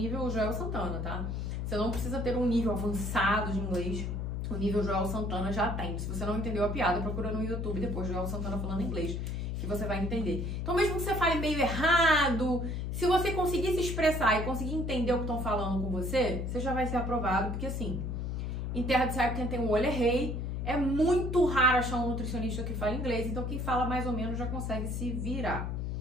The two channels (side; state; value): left; noise; hum, 2 dB below the sound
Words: Joel Santana, tá? Você não precisa ter um nível avançado de inglês. O nível Joel Santana já tem. Se você não entendeu a piada, procura no YouTube depois Joel Santana falando inglês, que você vai entender. Então, mesmo que você fale meio errado, se você conseguir se expressar e conseguir entender o que estão falando com você, você já vai ser aprovado, porque assim, em terra de saia, quem tem um olho é rei. É muito raro achar um nutricionista que fala inglês, então quem fala mais ou menos já consegue se virar,